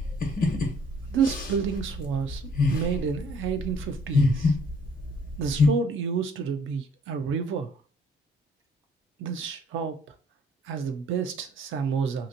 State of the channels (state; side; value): normal; both; correlation 0.60